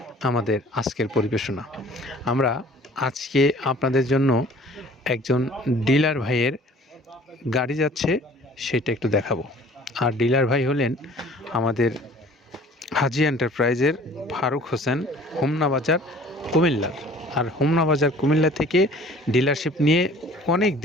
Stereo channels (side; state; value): both; normal; correlation 0.50